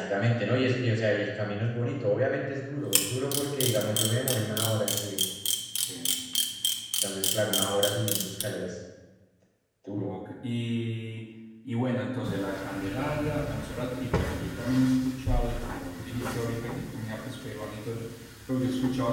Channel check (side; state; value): both; identical; correlation 1.00